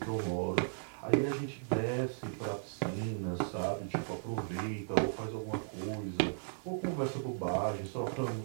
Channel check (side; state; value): left; silent; digital silence